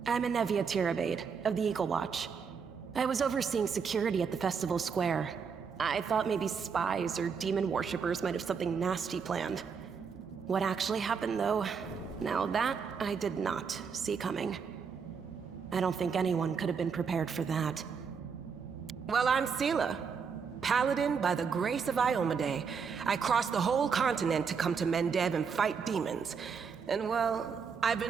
I'm Inevia Tirabade, of the Eagle Watch. I was overseeing security at the festival square. I thought maybe spies or demon worshippers might have something nasty planned. What actually happened, though? Now that, I did not see coming. I don't think anyone could have been prepared for that. Well, I'm Sela, Paladin by the grace of Iomade. I crossed the whole continent to come to Mendev and fight demons. And well, I've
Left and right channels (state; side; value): quieter; left; 6.1 dB